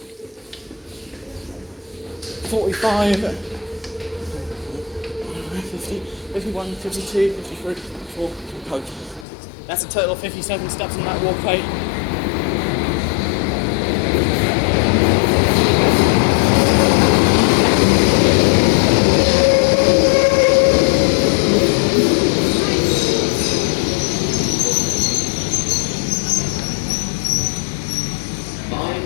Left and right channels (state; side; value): drops out; right; at 9.2 s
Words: 50, 51, 52, 53, 54, 55. That's a total of 57 steps on that walkway.